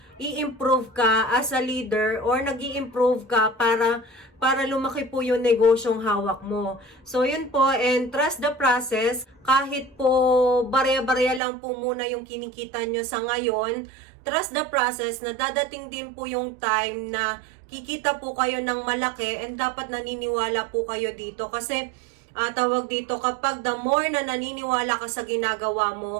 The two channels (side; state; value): left; drops out; at 11.4 s